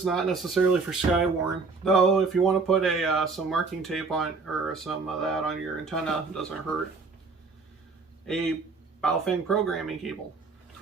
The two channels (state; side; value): quieter; left; 4.3 dB